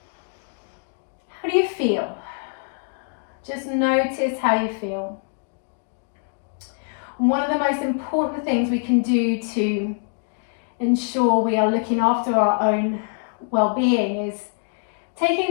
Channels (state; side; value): silent; right; 63 dB below the other